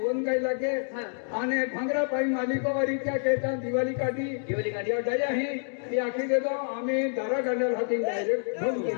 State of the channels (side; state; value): right; silent; digital silence